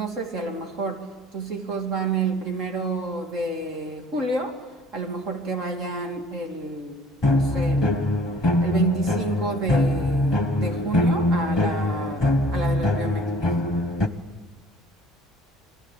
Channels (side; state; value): both; normal; correlation 0.52